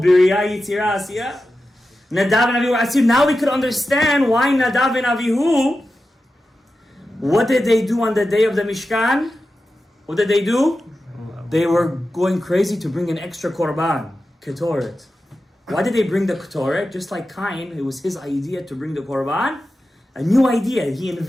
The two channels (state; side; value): normal; both; correlation 0.92